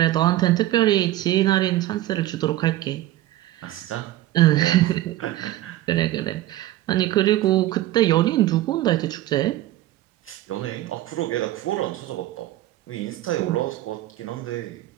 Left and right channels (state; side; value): quieter; left; 15.0 dB